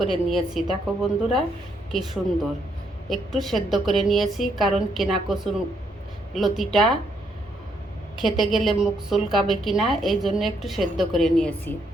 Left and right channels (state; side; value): normal; both; correlation 0.74